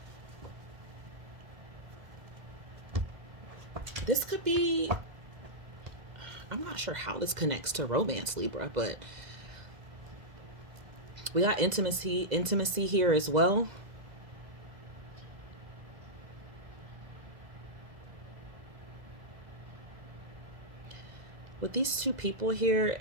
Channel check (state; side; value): late; left; 2.0 ms